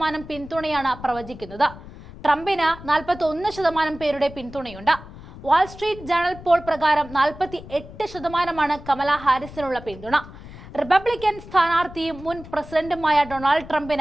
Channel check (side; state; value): left; noise; rumble, 16 dB below the sound